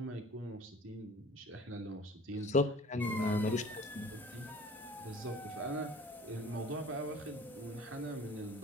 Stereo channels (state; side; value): normal; both; correlation 0.47